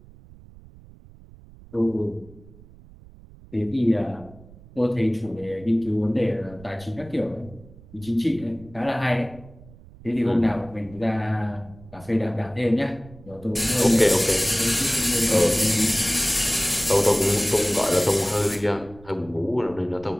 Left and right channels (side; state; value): right; noise; rumble, 22 dB below the sound